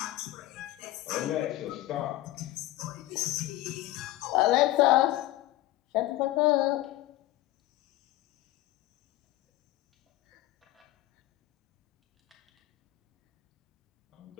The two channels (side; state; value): right; quieter; 16.6 dB